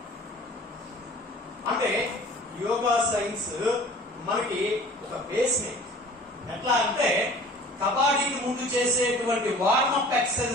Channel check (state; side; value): normal; both; correlation 0.46